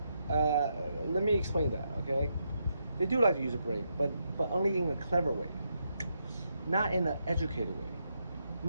Let me explain that, okay? They do like to use their brain, but only in a clever way, not in an educated way.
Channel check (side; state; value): both; inverted; correlation -0.81